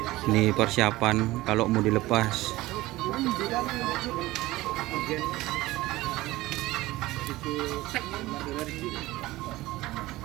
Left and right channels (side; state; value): left; quieter; 18.2 dB